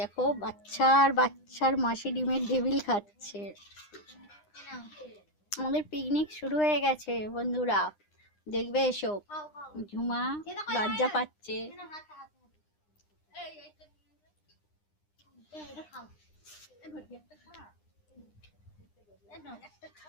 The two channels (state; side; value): late; right; 9.8 ms